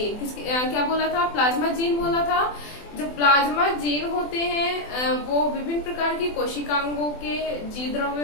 क्या बोला था? प्लाज्मा जीन बोला था। जो प्लाज्मा जीन होते हैं वो विभिन्न प्रकार की कोशिकांगों के जीव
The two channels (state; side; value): late; right; 24 ms